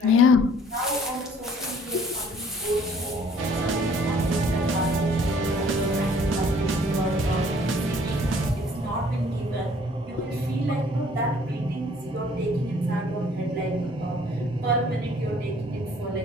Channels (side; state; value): both; normal; correlation 0.57